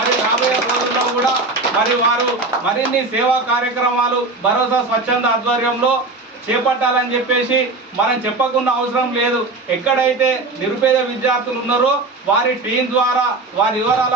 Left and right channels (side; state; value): left; quieter; 3.3 dB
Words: రాబోయే రోజుల్లో కూడా మరి వారు మరిన్ని సేవా కార్యక్రమాలు భరోసా స్వచ్ఛంద ఆధ్వర్యంలో చేపట్టాలని చెప్పేసి మనం చెప్పకున్న అవసరం లేదు. ఎక్కడైతే నిరుపేద విద్యార్థులు ఉన్నారో వారి టీం ద్వారా వారి